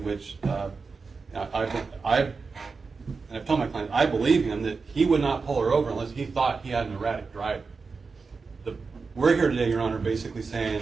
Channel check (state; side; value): quieter; left; 4.6 dB